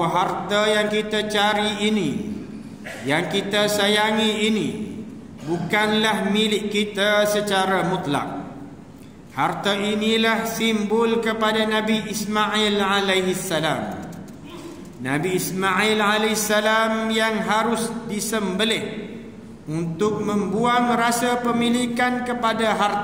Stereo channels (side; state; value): both; identical; correlation 1.00